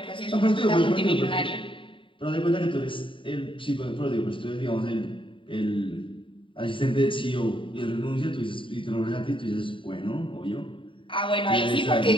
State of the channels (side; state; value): right; late; 0.25 ms